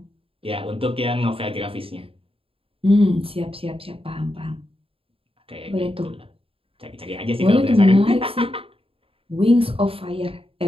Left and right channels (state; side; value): late; left; 0.27 ms